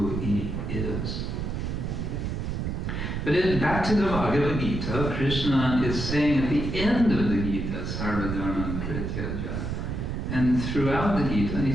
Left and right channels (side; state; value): right; noise; rumble, 3 dB below the sound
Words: he is. But back to the Bhagavad-gita, Krishna is saying at the end of the Gita, Sarva Dharma Parityaja. And throughout the Gita,